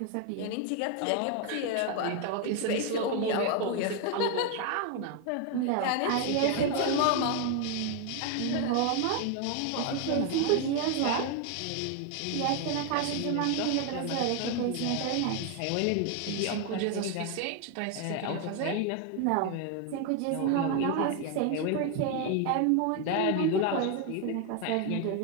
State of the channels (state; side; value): different; both; correlation 0.01